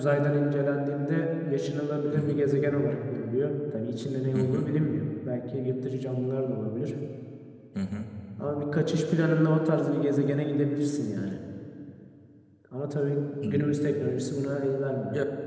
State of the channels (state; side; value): identical; both; correlation 1.00